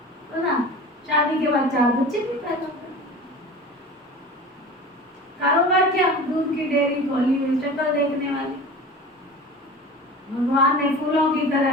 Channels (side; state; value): both; normal; correlation 0.36